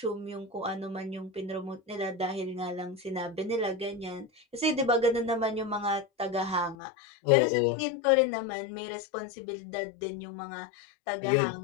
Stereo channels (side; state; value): right; drops out; at 6.8 s